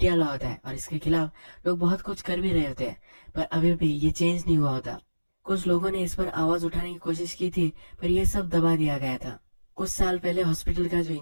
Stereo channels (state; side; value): inverted; both; correlation -1.00